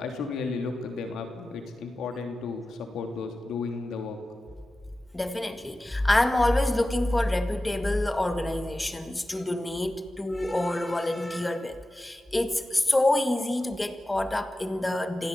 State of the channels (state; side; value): normal; both; correlation 0.94